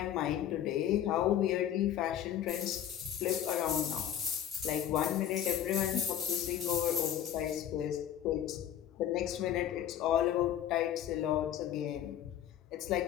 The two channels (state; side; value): quieter; right; 10.6 dB